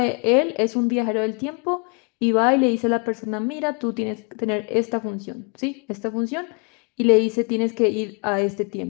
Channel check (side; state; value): right; quieter; 34.9 dB